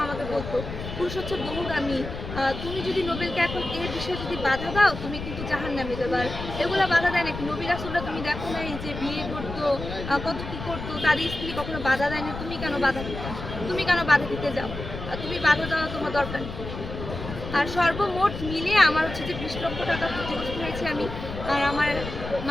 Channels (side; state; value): left; noise; rumble, 8 dB below the sound